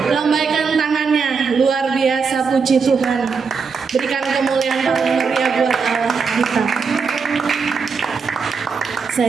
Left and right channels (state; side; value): quieter; left; 5.4 dB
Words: Lambaikan tangannya. Luar biasa, puji Tuhan. Berikan kemuliaan paling meriah buat Allah kita.